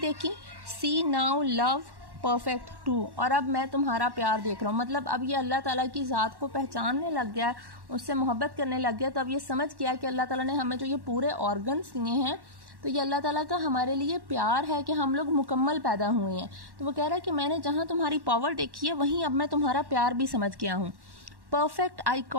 सी नाउ लव परफेक्ट टू, और अब मैं तुम्हारा प्यार देख रहा हूँ। मतलब अब ये अल्लाह ताला की ज़ात को पहचानने लग गया है, उससे मोहब्बत करने लग गया। तो अब ये समझ गया कि अल्लाह ताला ने हमें जो ये पूरे ऑर्गन्स दिए हैं, तो ये अल्लाह ताला का हमारे लिए प्यार है कि हम लोग मुकम्मल पैदा हुए हैं। तो वो कह रहा है कि मैंने जहाँ तुम्हारी पावर देखी है, वहीं अब मैं तुम्हारा प्यार भी समझ गया हूँ। Perfect I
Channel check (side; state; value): left; late; 1.1 ms